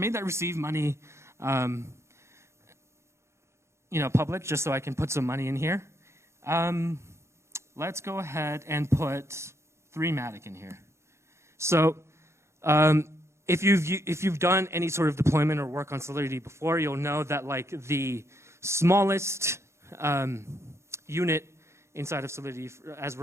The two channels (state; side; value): late; left; 0.13 ms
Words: that receive money, you know, public, just so I can put some money in here. Let's go ahead and put 3matic in here. So if you've done any sort of deployment or work on Solidity before, you'll know that like the smallest unit inside of Solidity,